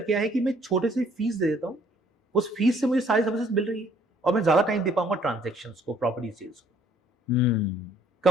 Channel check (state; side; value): normal; both; correlation 0.61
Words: क्या है कि मैं छोटे से फीस दे देता हूं, उस फीस से मुझे सारी सर्विसेज मिल रही है और मैं ज्यादा टाइम दे पाऊंगा ट्रांजेक्शन्स को, प्रॉपर्टी सेल्स को।